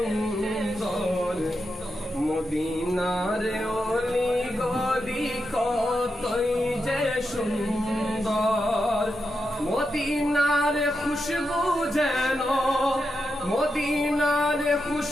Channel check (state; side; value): normal; both; correlation 0.87